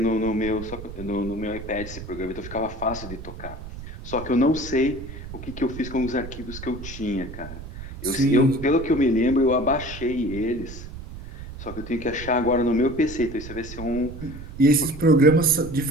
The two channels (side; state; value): right; noise; rumble, 11 dB below the sound